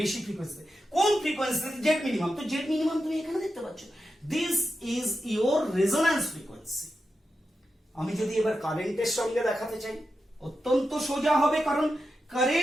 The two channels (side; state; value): both; normal; correlation 0.89